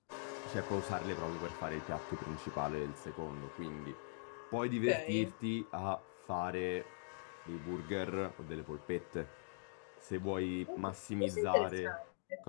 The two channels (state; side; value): silent; right; digital silence